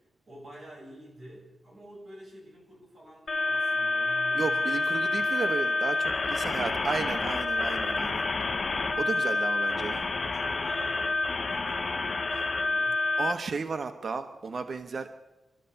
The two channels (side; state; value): both; normal; correlation 0.93